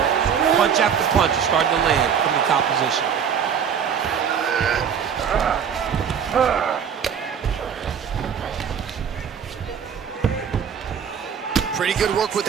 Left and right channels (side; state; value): left; quieter; 7.5 dB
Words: Punch after punch is starting to land from the top position. Pretty good work with